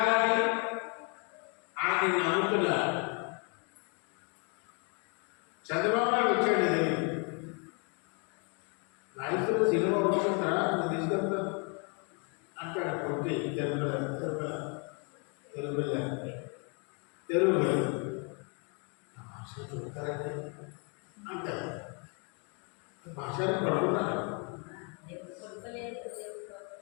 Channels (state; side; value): quieter; right; 36.1 dB